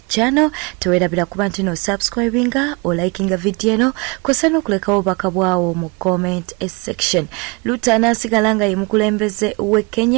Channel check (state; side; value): quieter; left; 29.2 dB